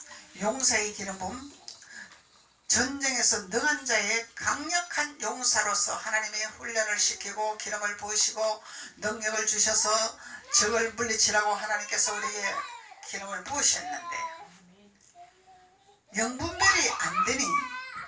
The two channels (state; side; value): identical; both; correlation 1.00